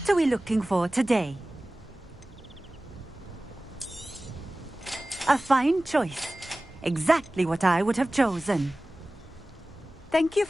are we looking for today? A fine choice. Exactly what I would have chosen. Thank you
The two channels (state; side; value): normal; both; correlation 0.97